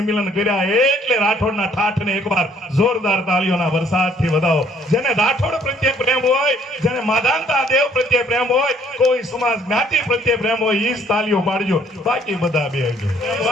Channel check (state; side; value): normal; both; correlation 0.62